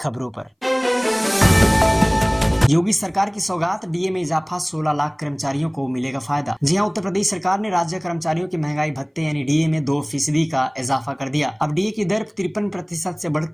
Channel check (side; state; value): both; identical; correlation 1.00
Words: पर। योगी सरकार की सौगात, डीए में इजाफा, 16 लाख कर्मचारियों को मिलेगा फायदा। जी हां, उत्तर प्रदेश सरकार ने राज्य कर्मचारियों के महंगाई भत्ते यानी डीए में 2% का इजाफा कर दिया। अब डीए की दर 53% से